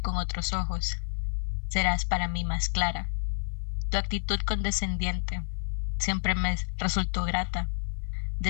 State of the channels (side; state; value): right; silent; 58 dB below the other